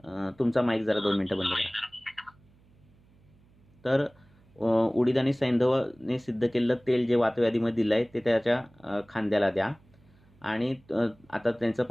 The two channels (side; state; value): right; noise; hum, 30 dB below the sound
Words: तुमचा माईक जरा 2 मिनिटं बंद करा. तर उडीद आणि सैंधवाने सिद्ध केलेलं तेल जे वातव्याधीमध्ये दिलं आहे ते त्याच्या खांद्याला द्या. आणि आता त्यांचं